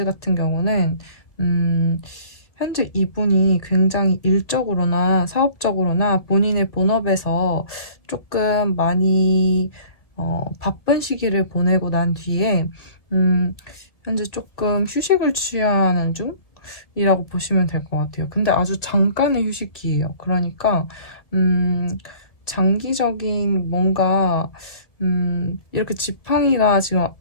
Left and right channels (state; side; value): late; right; 1.8 ms